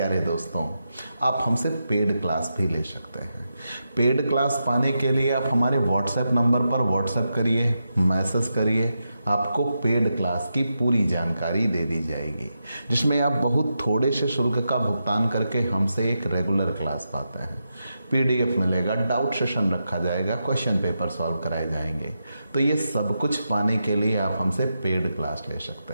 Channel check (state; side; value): inverted; both; correlation -0.87